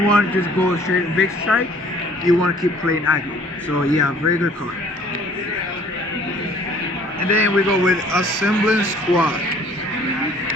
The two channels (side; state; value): both; normal; correlation 0.55